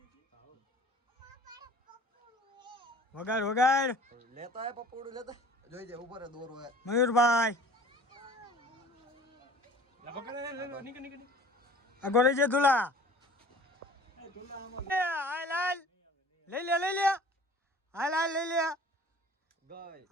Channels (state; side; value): normal; both; correlation 0.47